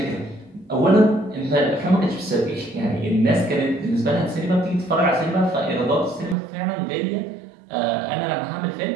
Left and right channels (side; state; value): left; drops out; at 6.4 s